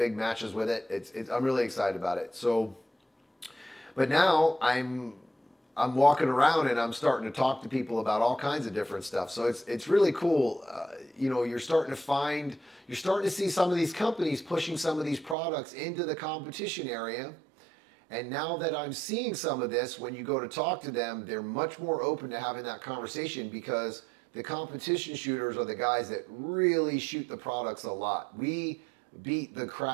matches with it. I'm really excited about it. So, but now I'm walking around and I'm starting to talk to people about all kinds of different stuff. So it's really cool. You're starting to see some of these companies pushing some of these products into the competition area. And now that I'm seeing some of this, when you go to talk to them, they're much more open to having that conversation because the competition shooters are the guys that really shoot the products a lot. We beat the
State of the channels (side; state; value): left; drops out; at 15.4 s